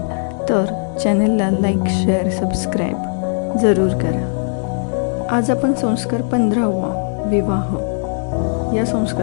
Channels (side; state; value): right; silent; 67 dB below the other